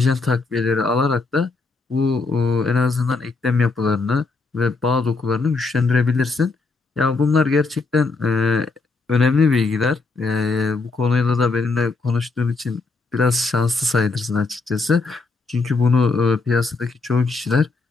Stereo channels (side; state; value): right; quieter; 3.9 dB